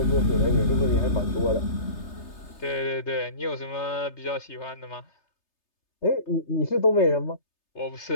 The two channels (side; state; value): right; late; 3.3 ms